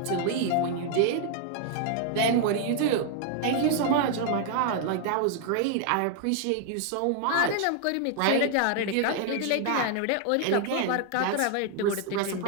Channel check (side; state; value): both; different; correlation 0.00